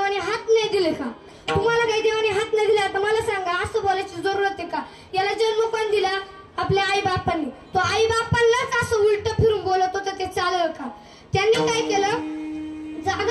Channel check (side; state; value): both; identical; correlation 1.00